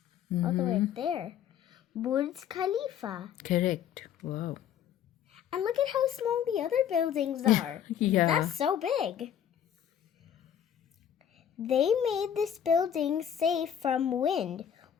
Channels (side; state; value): right; quieter; 9.3 dB